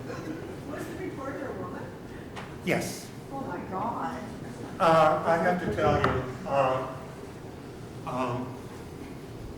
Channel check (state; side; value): identical; both; correlation 1.00